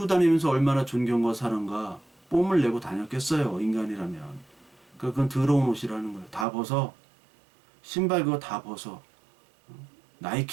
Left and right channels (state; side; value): drops out; left; at 6.5 s